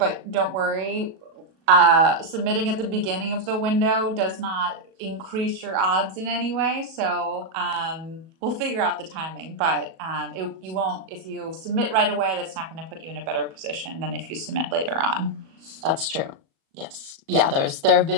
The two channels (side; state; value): left; late; 37 ms